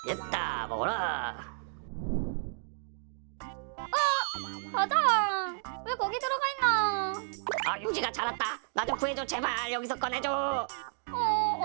됐다, 먹어라. 사장 왜 거기 들어가 있나? 용식아 잘 왔다. 나 좀 구해줘 제발. 여기서 꺼내줘.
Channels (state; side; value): silent; left; 57 dB below the other